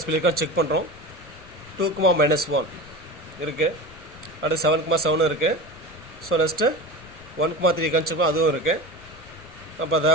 B இருக்கான்னு check பண்ணுறோம். 2, minus 1 இருக்குது. அடுத்து 7, 7 இருக்குது. So next 1, 3 இருக்கான்னு check அதுவும் இருக்குது. அப்போ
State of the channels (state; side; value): noise; left; rumble, 24 dB below the sound